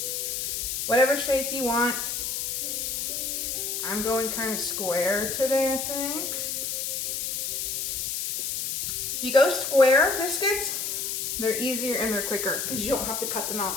Whatever shape you want. I'm going kind of square today, I think. If you go square biscuits, they're easier and they're quicker because you don't have to cut them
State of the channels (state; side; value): noise; left; hiss, 2 dB below the sound